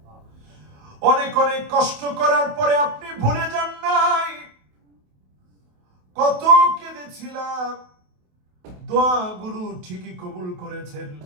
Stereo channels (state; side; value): late; left; 28 ms